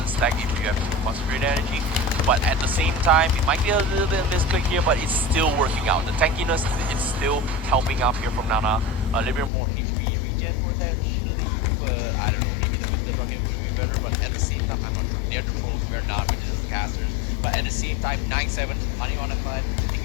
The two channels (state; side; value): drops out; right; at 9.5 s